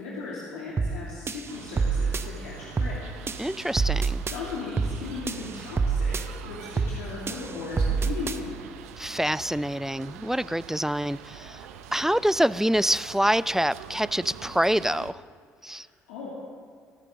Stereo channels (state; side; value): normal; both; correlation 0.86